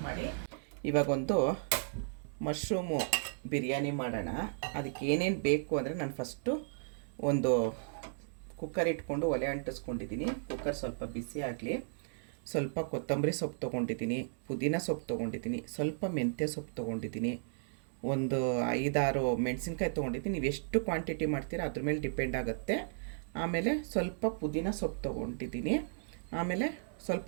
ಮಾಡಿ. ಇವಾಗೊಂದು ಮಶ್ರೂಮು ಬಿರಿಯಾನಿ ಮಾಡೋಣ. ಅದಕ್ಕೆ ಏನೇನು ಬೇಕು ಅಂದರೆ ನಾನು ಫಸ್ಟು ಒಂದು ಕುಕ್ಕರ್ ಇಟ್ಕೊಂಡು ಒಲೆ ಅಂಟಿಸ್ಕೊಂಡಿದ್ದೀನಿ. ಕುಕ್ಕರ್ ಸ್ವಲ್ಪ ಬಿಸಿ ಆಗಲಿ. ಸ್ವಲ್ಪ ಕೊತ್ತಂಬರಿ ಸೊಪ್ಪು ತೊಗೊಂಡಿದ್ದೀನಿ, ಪುದೀನ ಸೊಪ್ಪು ತೊಗೊಂಡಿದ್ದೀನಿ, ಸ್ವಲ್ಪ ಮೆಂತ್ಯ ಸೊಪ್ಪು ತೊಗೊಂಡಿದ್ದೀನಿ, ಒಂದು 5-6 ಮೆಣಸಿನ್ಕಾಯಿ ತೊಗೊಂಡಿದ್ದೀನಿ. ನೀವು ಎಷ್ಟು ಕ್ವಾಂಟಿಟಿ ಮಾಡ್ತೀರಾ ಅದ್ರ ಮೇಲೆ ಡಿಪೆಂಡ್ ಆಗುತ್ತೆ. ಆಮೇಲೆ ಸ್ವಲ್ಪ ಪುದೀನ ಸೊಪ್ಪು ತೊಗೊಂಡಿದ್ದೀನಿ. ಆಮೇಲೆ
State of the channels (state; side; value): silent; left; digital silence